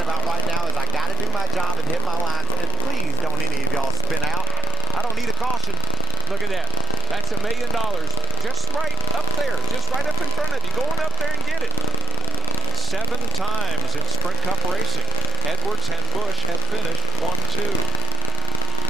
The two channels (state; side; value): normal; both; correlation 0.14